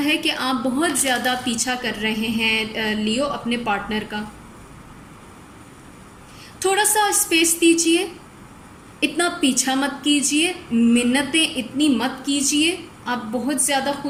कि आप बहुत ज़्यादा पीछा कर रहे हैं लियो अपने पार्टनर का। थोड़ा सा स्पेस दीजिए, इतना पीछा मत कीजिए, मिन्नतें इतनी मत कीजिए। आप बहुत ज़्यादा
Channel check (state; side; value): identical; both; correlation 1.00